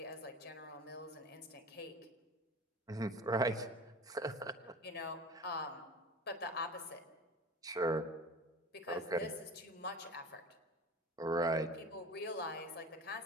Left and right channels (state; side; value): normal; both; correlation 0.35